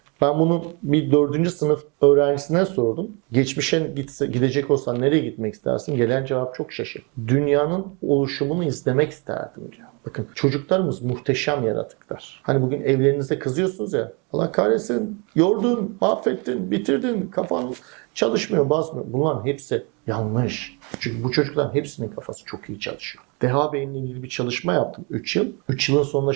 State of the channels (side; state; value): left; quieter; 31.7 dB